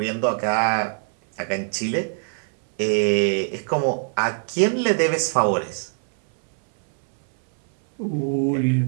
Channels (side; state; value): left; silent; 60 dB below the other